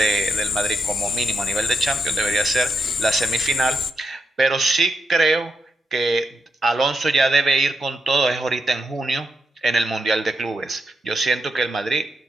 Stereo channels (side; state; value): both; normal; correlation 0.83